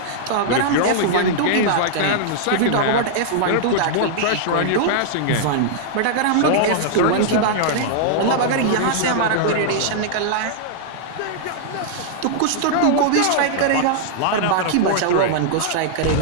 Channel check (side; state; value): both; different; correlation -0.01